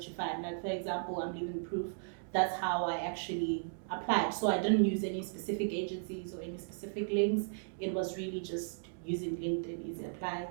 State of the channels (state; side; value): silent; left; digital silence